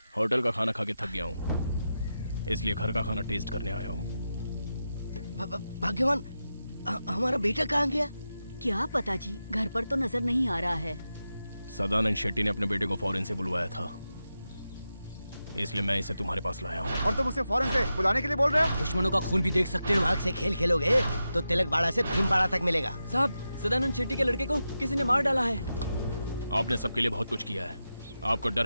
होटल का खाना खा के थक गया हूँ, इसलिए घर का खाना टेस्ट करने आया हूँ। भाग्यवान, हमारा बेटा कहाँ गया? क्या पता जी, घर पर तो नजर नहीं आ रहा है। सदानंद शेट्टी ने अपने बेटे को फॉरेन से बुलवाया था, इसलिए मैं इसे तुम्हारे पास लाया हूँ। और तुम उसे फौरन से बुलाने के लिए बोल रहे हो? दुश्मनों का खून भी देख सकते हो। आग से खेल खेलोगे तो तिलक बाड़ा से भीमबाड़ा तक मिलेगा। साहब, सदानंद शेट्टी के लड़के को किसी ने मार डाला है। आपने सबके लिए बहुत कुछ किया है। आपको डर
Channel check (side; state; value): both; inverted; correlation -0.90